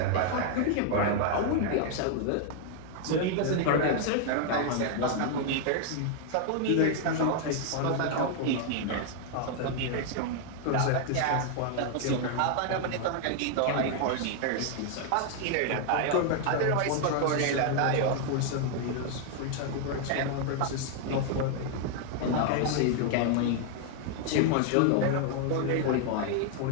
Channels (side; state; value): both; different; correlation 0.00